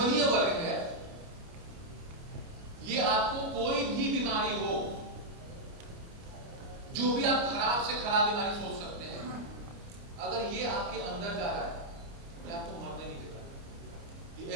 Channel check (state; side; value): late; left; 29 ms